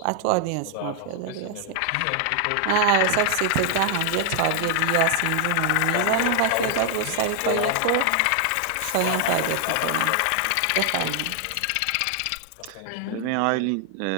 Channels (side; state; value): both; different; correlation 0.00